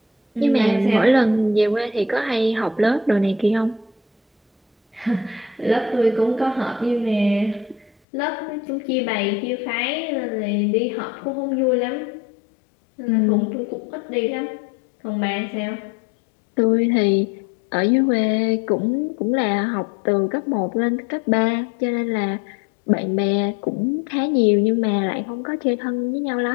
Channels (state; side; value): drops out; right; at 7.9 s